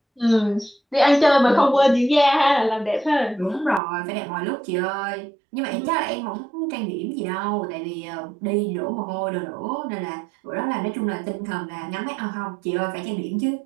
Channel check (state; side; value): drops out; left; at 3.8 s